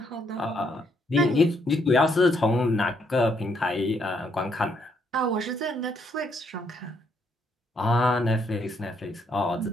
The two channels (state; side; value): normal; both; correlation 0.73